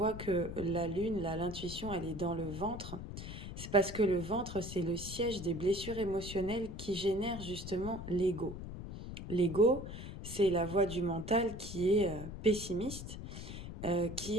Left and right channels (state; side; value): noise; left; rumble, 9 dB below the sound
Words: que la lune, l'intuition, elle est dans le ventre? C'est parce que le ventre, c'est le siège des blessures émotionnelles qui génèrent justement l'ego. L'ego, c'est la voie du mental qui est pessimiste, qui